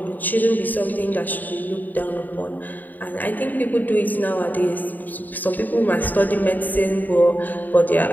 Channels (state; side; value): late; right; 0.086 ms